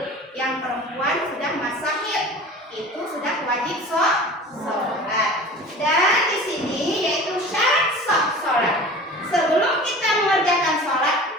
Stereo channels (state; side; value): normal; both; correlation 0.40